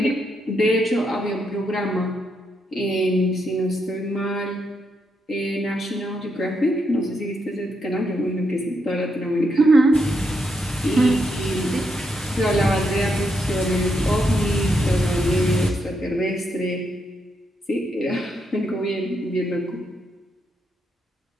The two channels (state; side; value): normal; both; correlation 0.80